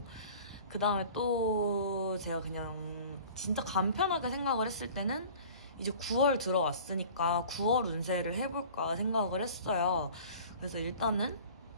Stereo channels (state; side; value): inverted; both; correlation -0.44